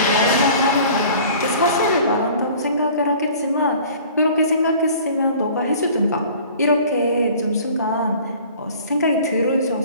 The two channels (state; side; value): inverted; both; correlation -0.47